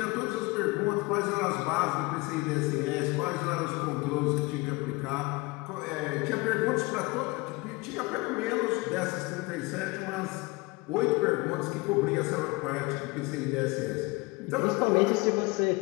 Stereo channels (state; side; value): quieter; right; 24.8 dB